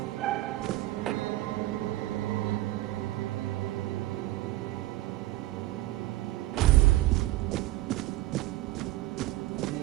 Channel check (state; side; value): quieter; left; 17.0 dB